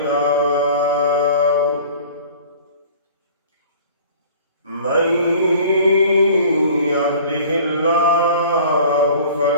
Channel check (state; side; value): inverted; both; correlation -0.46